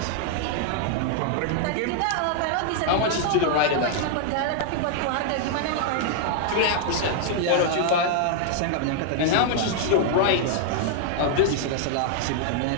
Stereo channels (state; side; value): different; both; correlation -0.01